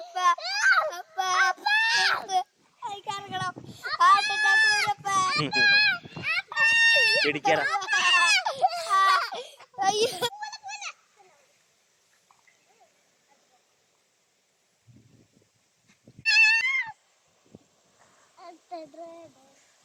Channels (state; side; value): identical; both; correlation 1.00